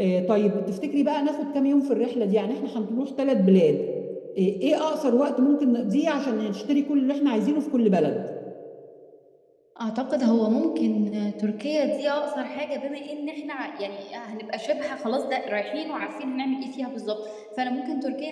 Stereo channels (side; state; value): both; identical; correlation 1.00